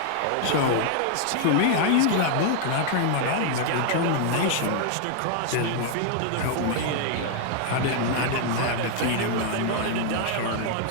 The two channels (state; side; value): different; both; correlation 0.00